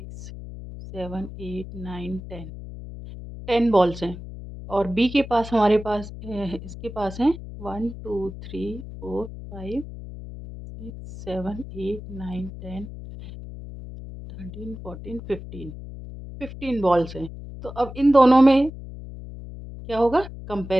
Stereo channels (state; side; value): noise; left; hum, 12 dB below the sound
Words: 7 8 9 10 10 बॉल्स हैं। और बी के पास हमारे पास इसके पास हैं 1 2 3 4 5 6 7 8 9 10 13 14 15 15 बॉल्स हैं। तो अब इन दोनों में क्या होगा?